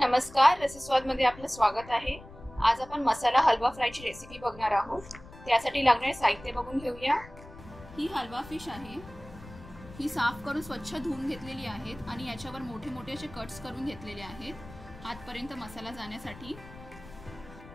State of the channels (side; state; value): left; noise; rumble, 18 dB below the sound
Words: रसस्वाद मध्ये आपलं स्वागत आहे। आज आपण मसाला हलवा फ्रायची रेसिपी बघणार आहोत। त्यासाठी लागणारे साहित्य बघून घेऊया। ही हलवा फिश आहे। ही साफ करून स्वच्छ धुवून घेतलेली आहेत आणि याच्यावर मोठे मोठे असे कट्स करून घेतलेले आहेत आतपर्यंत मसाला जाण्यासाठी।